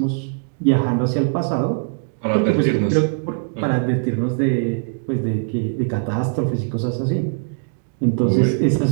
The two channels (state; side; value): silent; left; 65 dB below the other